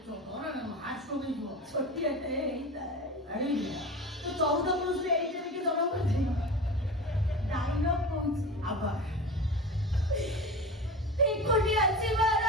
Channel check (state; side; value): normal; both; correlation 0.30